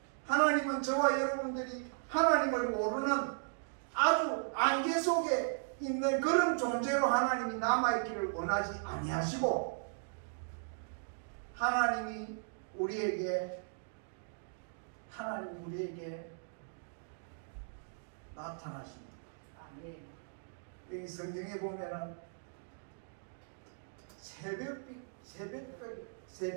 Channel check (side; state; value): left; silent; digital silence